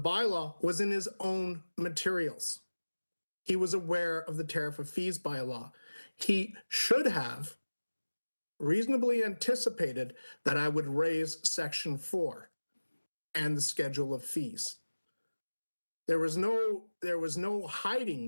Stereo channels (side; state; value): both; inverted; correlation -1.00